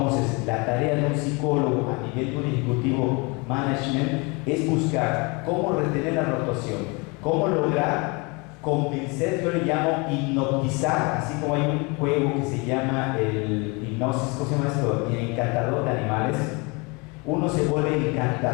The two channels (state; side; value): quieter; right; 28.9 dB